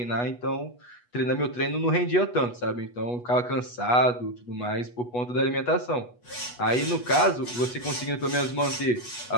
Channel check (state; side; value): late; right; 8.2 ms